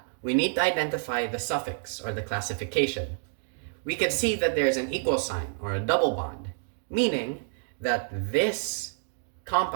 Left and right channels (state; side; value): silent; left; 57 dB below the other